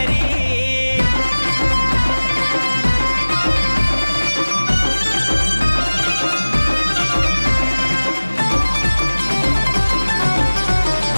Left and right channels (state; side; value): inverted; both; correlation -1.00